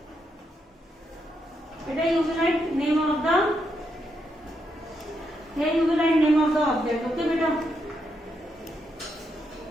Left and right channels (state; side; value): normal; both; correlation 0.81